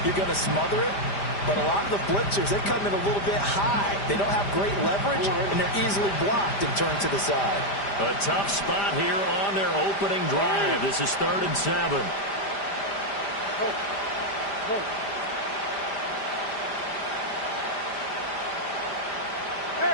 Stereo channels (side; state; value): right; late; 5.0 ms